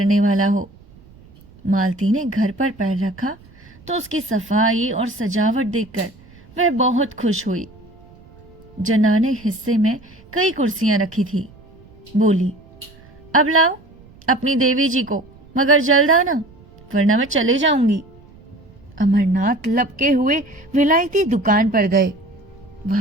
वाला हो। मालती ने घर पर पैर रखा तो उसकी सफाई और सजावट देखकर वह बहुत खुश हुई। जनाने हिस्से में कई कुर्सियां रखी थी। बोली, अब लाओ अपनी देवी जी को, मगर जल्द आना वरना मैं चले जाऊंगी। अमरनाथ लपके हुए विलायती दुकान पर गए।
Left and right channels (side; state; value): right; noise; rumble, 25 dB below the sound